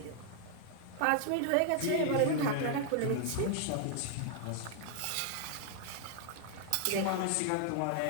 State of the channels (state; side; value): different; both; correlation 0.00